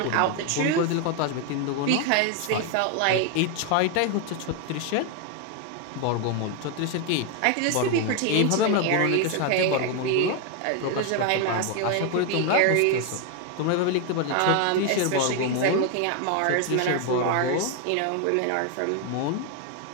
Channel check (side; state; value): both; different; correlation 0.01